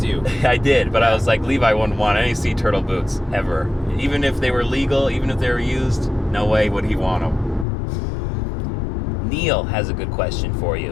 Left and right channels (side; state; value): right; drops out; at 7.7 s